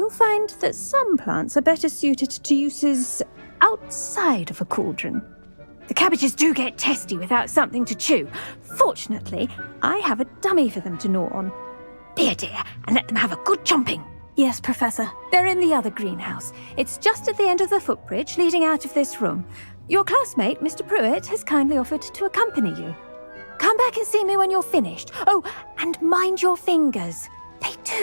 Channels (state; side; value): inverted; both; correlation -1.00